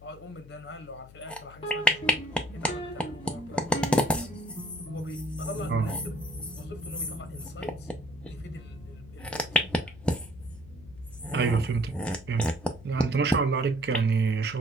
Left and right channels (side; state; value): left; noise; hum, 20 dB below the sound